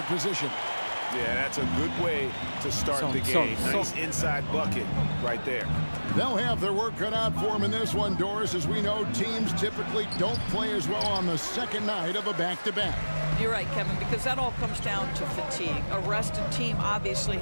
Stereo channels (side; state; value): both; inverted; correlation -1.00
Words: position. Yeah, that's a good way to start the game. Nice inside bucket right there. They'll have their work cut out for them in this one, Doris. As we know, teams typically don't play as well on the second night of a back-to-back. You're right, Kevin, because that all comes down to fatigue. A rested team obviously